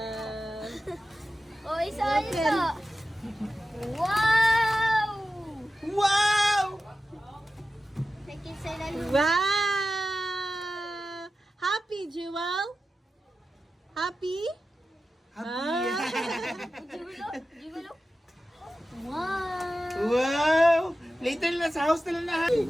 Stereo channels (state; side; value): normal; both; correlation 0.93